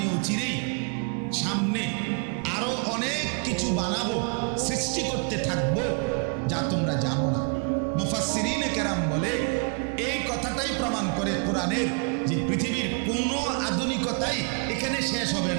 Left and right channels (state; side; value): quieter; left; 37.3 dB